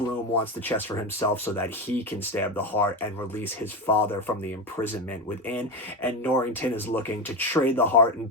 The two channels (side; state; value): both; normal; correlation 0.17